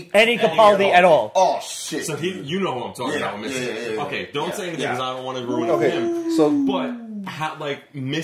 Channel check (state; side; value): identical; both; correlation 1.00